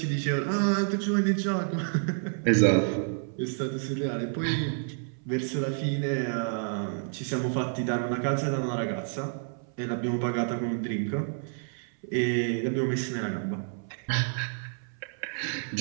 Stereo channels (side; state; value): left; silent; 58 dB below the other